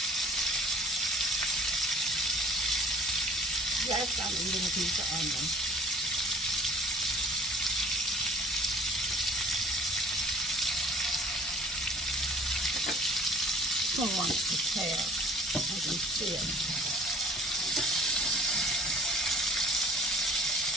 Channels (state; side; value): normal; both; correlation 0.51